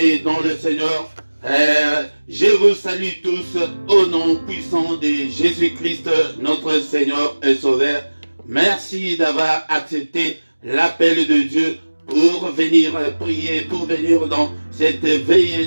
dans le Seigneur. Je vous salue tous au nom puissant de Jésus-Christ, notre Seigneur et Sauveur. Merci d'avoir accepté l'appel de Dieu pour venir prier, pour venir dans cette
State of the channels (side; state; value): both; inverted; correlation -1.00